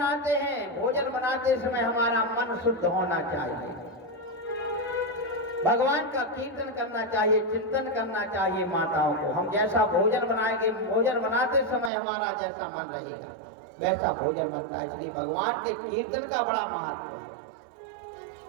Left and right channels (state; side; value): drops out; left; at 11.9 s